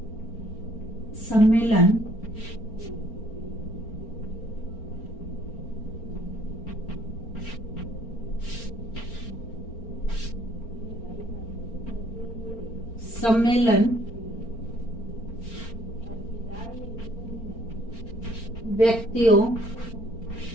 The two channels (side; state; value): right; late; 4.4 ms